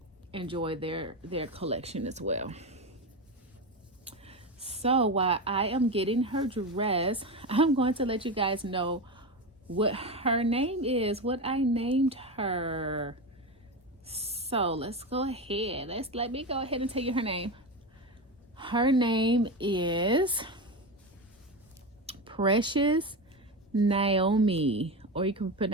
enjoy their collection as well. So while I am getting her dressed, I'm going to let you guys know what her name is, what I named her. So let's go ahead. Let me go ahead and tell you her name. Her name is Precious Naomi, or you can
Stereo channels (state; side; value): normal; both; correlation 0.19